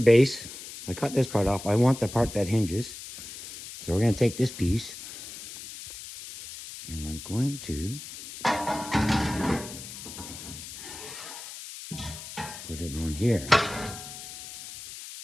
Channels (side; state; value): left; noise; hiss, 12 dB below the sound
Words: I cut this part off. I want the part that hinges. So we're going to take this piece and I'm going to put it on here.